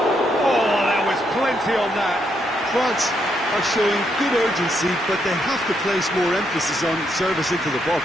Oh, there was plenty on that. France are showing good urgency, but they have to place more emphasis on service into the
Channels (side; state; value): both; normal; correlation 0.77